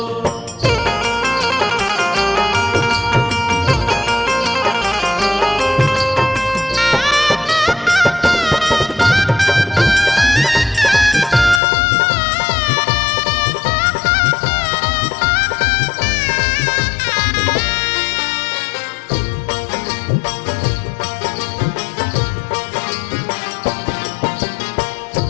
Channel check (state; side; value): drops out; right; at 11.6 s